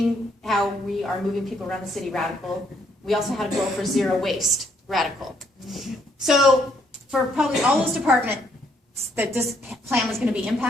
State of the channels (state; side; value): normal; both; correlation 0.70